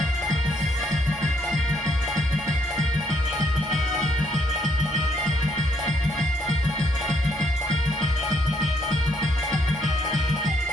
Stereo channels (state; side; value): normal; both; correlation 0.71